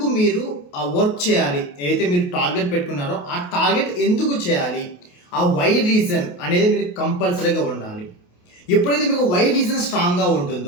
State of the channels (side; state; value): right; late; 28 ms